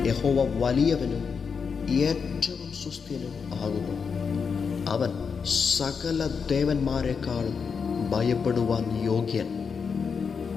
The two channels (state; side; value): quieter; right; 5.8 dB